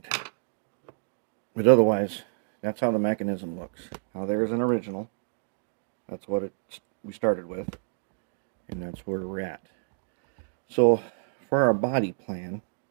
But otherwise, that's how the mechanism looks. Now there's an original. That's what we started with. And that's where we're at. So for our body plan,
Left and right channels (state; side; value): silent; left; digital silence